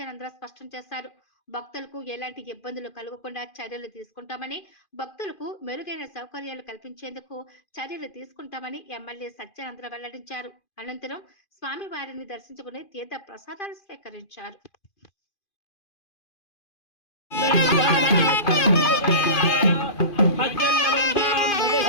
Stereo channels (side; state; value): right; late; 2.5 ms